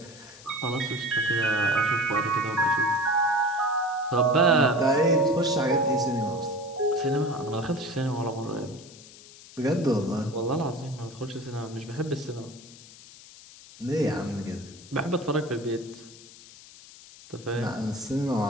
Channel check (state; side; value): noise; left; hiss, 20 dB below the sound